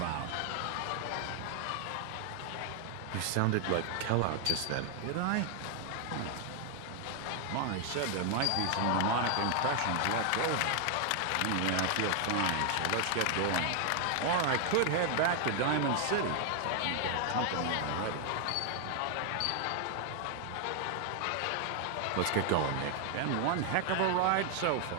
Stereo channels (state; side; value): different; both; correlation 0.00